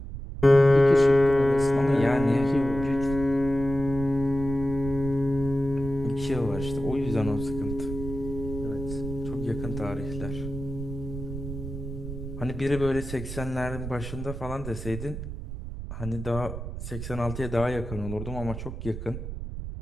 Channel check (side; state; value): right; noise; rumble, 8 dB below the sound